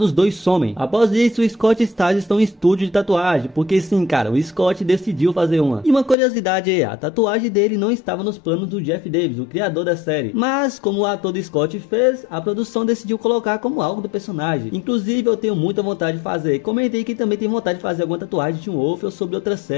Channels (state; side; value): drops out; right; at 6.2 s